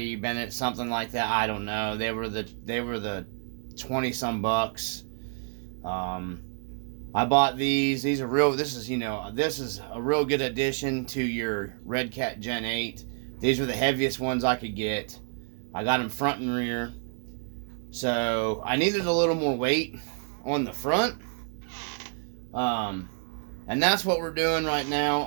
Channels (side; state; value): left; silent; 59 dB below the other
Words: something like that. I don't know. They were the 20 some bucks. I bought these. These are real. This is a real good addition to your Red Gen 8. These were the heaviest ones I could get. I got them front and rear. So I needed a little more weight on the front. And that's what we're doing right now.